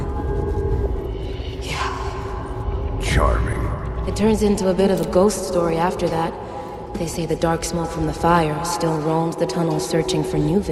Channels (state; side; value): identical; both; correlation 1.00